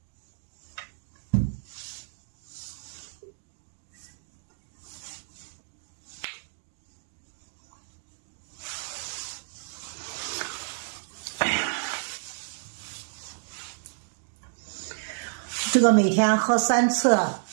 这个每天喝3次，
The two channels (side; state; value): left; silent; digital silence